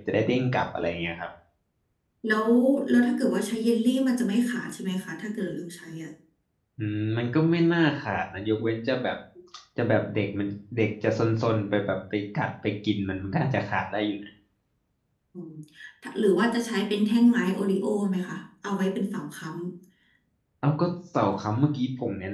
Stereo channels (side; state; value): both; identical; correlation 1.00